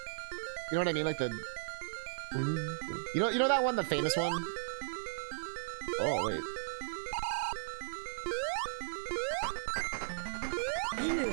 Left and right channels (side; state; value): left; silent; digital silence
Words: You know what I mean? Like the... You know that one, the famous one? Oh, wait.